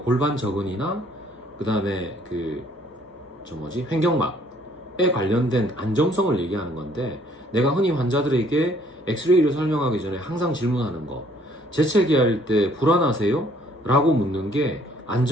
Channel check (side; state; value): both; normal; correlation 0.62